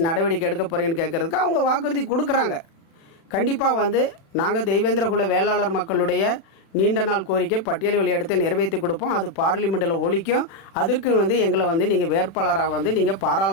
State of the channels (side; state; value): right; late; 36 ms